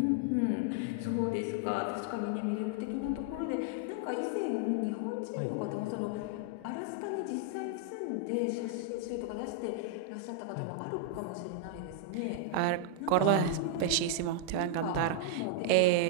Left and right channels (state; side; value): different; both; correlation 0.00